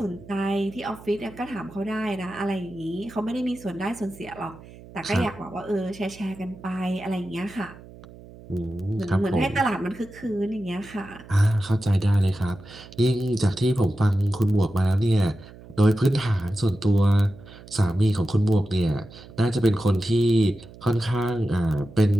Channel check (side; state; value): right; noise; hum, 19 dB below the sound